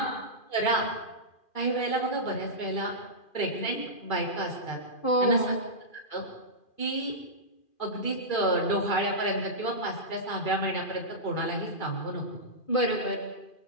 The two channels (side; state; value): right; late; 2.4 ms